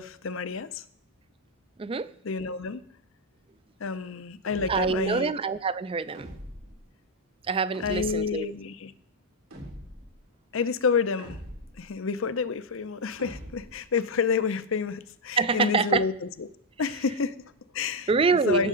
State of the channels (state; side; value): normal; both; correlation 0.01